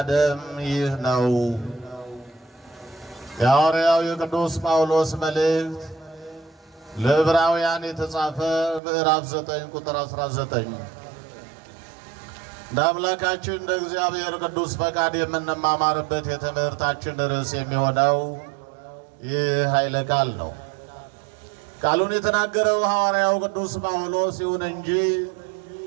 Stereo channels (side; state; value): left; drops out; at 8.8 s